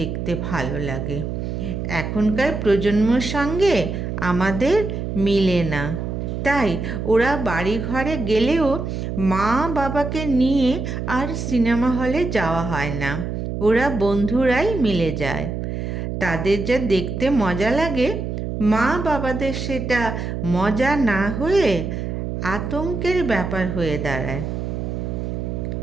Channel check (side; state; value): right; noise; hum, 4 dB below the sound